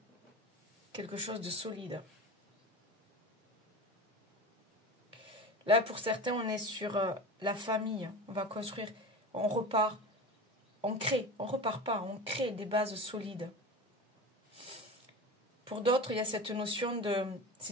quelque chose de solide. Là, pour certains, on est sur la famille. On va construire, on repart, on crée, on repart pas, on crée des bases solides. Pour d'autres, il y a cette notion de...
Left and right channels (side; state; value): both; normal; correlation 0.30